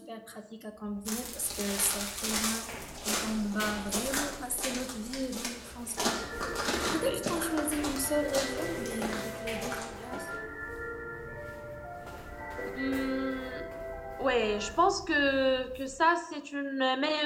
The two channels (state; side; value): identical; both; correlation 1.00